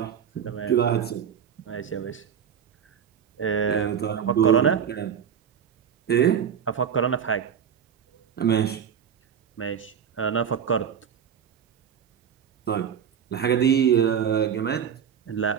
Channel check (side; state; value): left; quieter; 8.0 dB